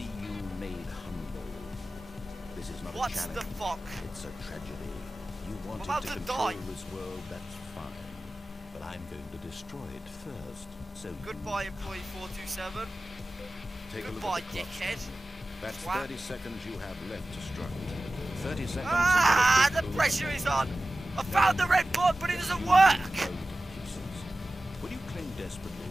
you made humble. This is not What a challenge. the fuck? It's a tragedy. You wanted about to to control die. this world, that's fine. But I'm going to destroy it first. So Goodbye, employee 427. take a look Goodbye, at the clock. dickhead. That's Twat. 30 seconds you have left to struggle. 30 seconds. Ah, until the it pressure goes is on. I found the red button, but it doesn't work. to pieces. Will you cling desperately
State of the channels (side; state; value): both; normal; correlation 0.96